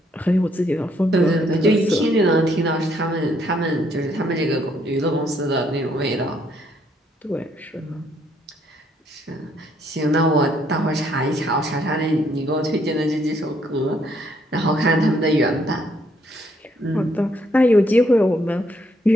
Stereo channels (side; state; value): both; normal; correlation 0.70